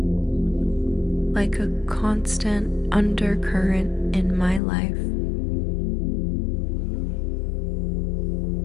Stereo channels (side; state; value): right; drops out; at 4.6 s